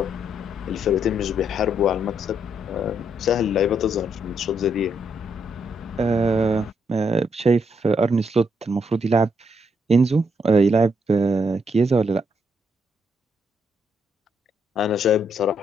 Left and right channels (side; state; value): both; normal; correlation 0.76